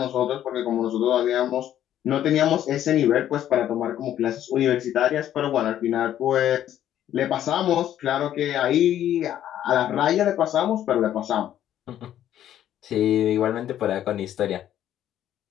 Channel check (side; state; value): right; quieter; 11.4 dB